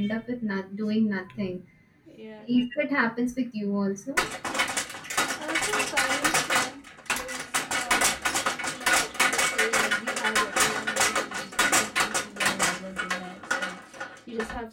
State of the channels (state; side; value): identical; both; correlation 1.00